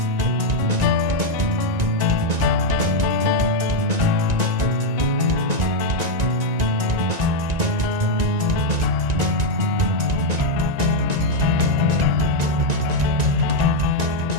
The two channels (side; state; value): left; late; 1.9 ms